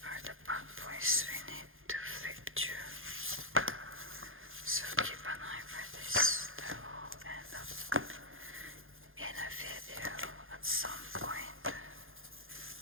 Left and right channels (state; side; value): late; left; 0.59 ms